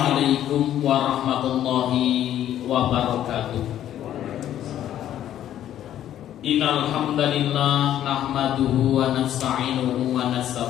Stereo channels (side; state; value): right; quieter; 11.5 dB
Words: warahmatullahi wabarakatuh. Innal hamdalillah nahmaduhu wa nasta'inuhu wa